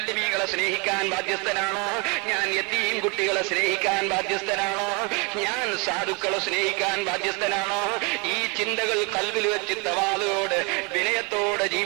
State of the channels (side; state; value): left; quieter; 31.1 dB